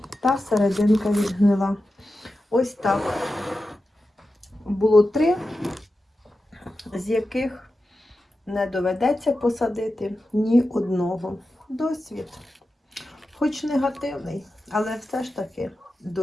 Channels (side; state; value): both; normal; correlation 0.92